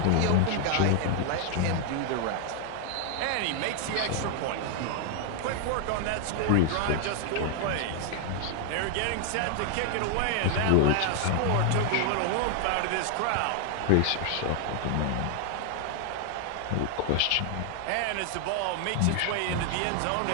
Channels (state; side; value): different; both; correlation 0.00